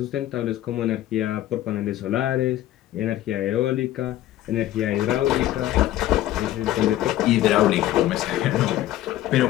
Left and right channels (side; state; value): right; quieter; 13.9 dB